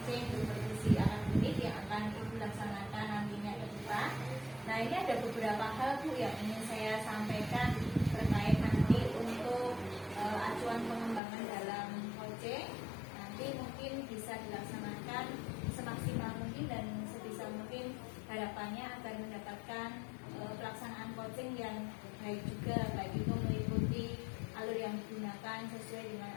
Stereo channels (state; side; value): drops out; right; at 11.2 s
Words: supervisi anak didik yang akan Ibu laksanakan nantinya ke depan. Nah, ini ada beberapa hal Bu yang ingin saya sampaikan terkait nanti untuk acuan pengembangan dalam coaching. Nanti mungkin bisa dilaksanakan semaksimal mungkin dan sebisa mungkin, harapannya agar mendapatkan pelaksanaan coaching yang baik juga, baik itu meliputi alur yang digunakan sesuai dengan